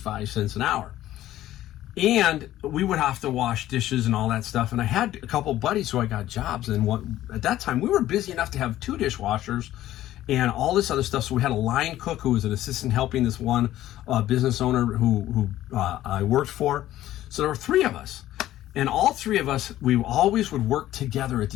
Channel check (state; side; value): quieter; right; 13.9 dB